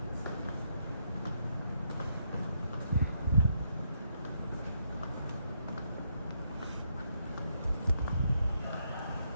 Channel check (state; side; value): inverted; both; correlation -0.76